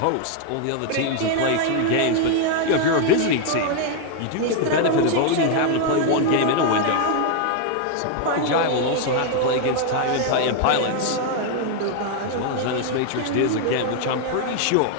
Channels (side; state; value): both; different; correlation 0.01